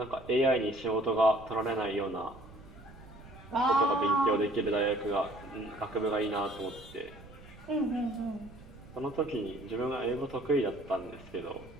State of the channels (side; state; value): right; noise; rumble, 19 dB below the sound